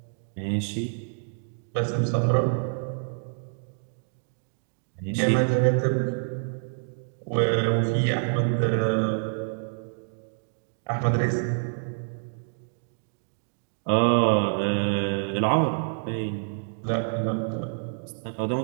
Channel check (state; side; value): silent; left; digital silence